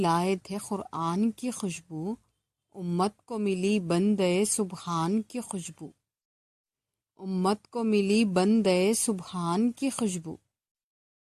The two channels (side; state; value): both; identical; correlation 1.00